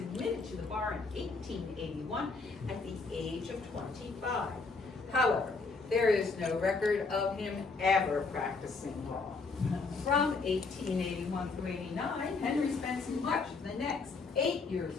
to the bar in 1881 at the age of 25. However, there is no record of him ever practicing law. From 1881 through 89, Henry spends much of the next 8 years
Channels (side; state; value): right; quieter; 4.2 dB